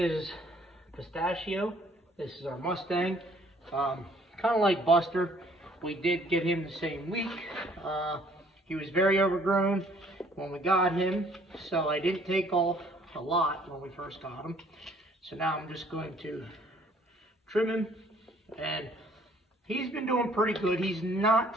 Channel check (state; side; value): normal; both; correlation 0.60